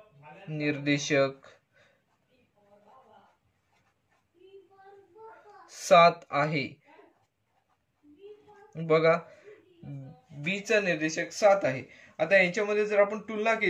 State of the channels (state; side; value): identical; both; correlation 1.00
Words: 7 आहे. बघा बी चा निर्देशक 7 आहे. आता यांच्यामध्ये जर आपण तुलना